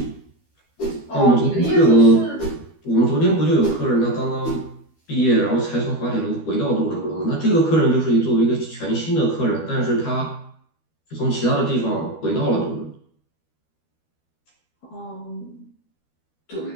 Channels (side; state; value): right; late; 12 ms